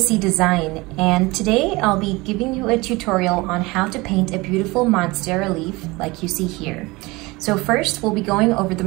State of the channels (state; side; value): quieter; left; 22.9 dB